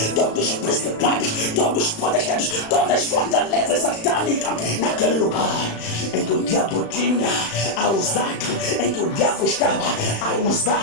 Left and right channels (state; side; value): late; right; 36 ms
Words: os principados, todos os potestades, todas as fortalezas satânicas, naquele lugar em que o diabo tinha a usar, em que o diabo estava a